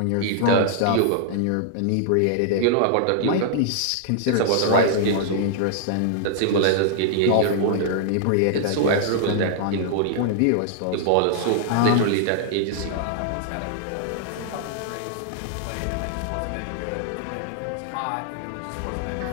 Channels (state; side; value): different; both; correlation -0.01